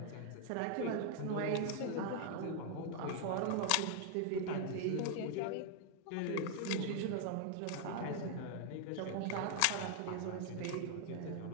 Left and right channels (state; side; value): different; both; correlation 0.00